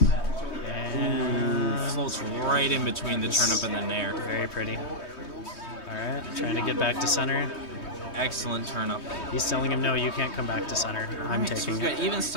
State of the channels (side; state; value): right; late; 3.2 ms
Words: And Floats right in between the turnip and the nair. very pretty. All right, trying to get back to center. Excellent turnip. He's telling him, no, you can't come back to center. I'm So taking we've it. got even